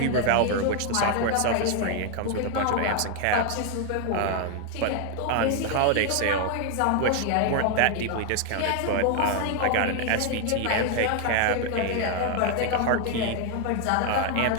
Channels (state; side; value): different; both; correlation 0.01